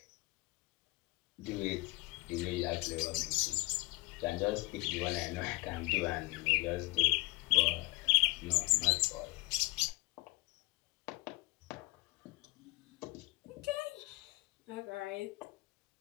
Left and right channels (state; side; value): quieter; right; 23.9 dB